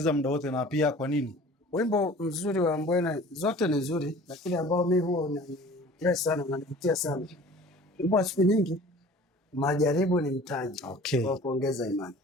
muda wote, na pia kwa nini? Wimbo mzuri wa Ambwene, zote ni nzuri, lakini ambao mimi huwa unanipress sana, unanivutia sana, wimbo wa siku nyingi, Majaribu ni Mtaji wa kuongeza imani.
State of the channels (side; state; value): both; normal; correlation 0.45